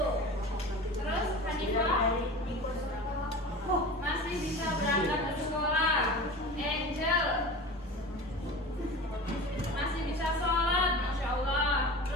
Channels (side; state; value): both; normal; correlation 0.34